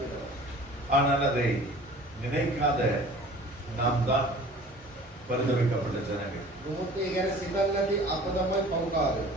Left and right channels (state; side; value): normal; both; correlation 0.46